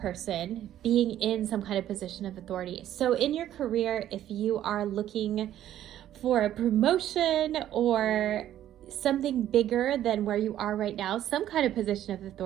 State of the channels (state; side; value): quieter; left; 12.0 dB